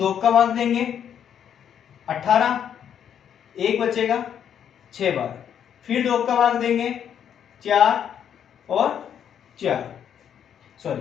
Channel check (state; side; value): quieter; right; 8.9 dB